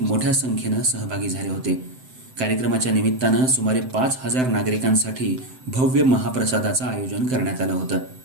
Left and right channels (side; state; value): left; late; 7.8 ms